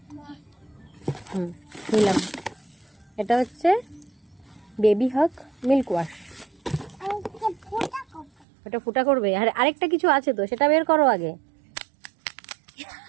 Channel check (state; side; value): drops out; left; at 8.5 s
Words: নিলাম। এটা হচ্ছে বেবি হক মিল্ক ওয়াশ। ওটা ফুটা করবে? আর আরেকটা কিছু আছে তো, সেটা বের করো আগে।